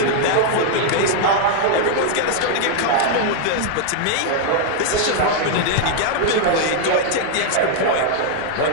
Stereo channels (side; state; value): both; different; correlation 0.00